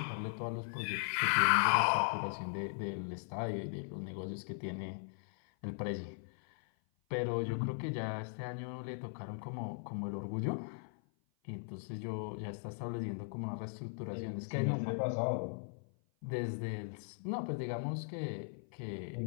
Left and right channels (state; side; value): silent; right; 52 dB below the other